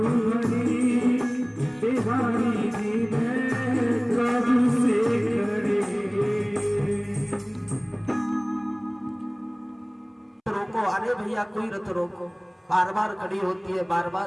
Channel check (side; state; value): both; identical; correlation 1.00